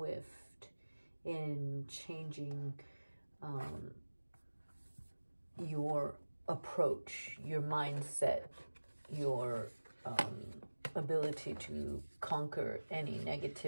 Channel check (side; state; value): both; inverted; correlation -1.00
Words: in changing your approach, your mindset, your ability to conquer any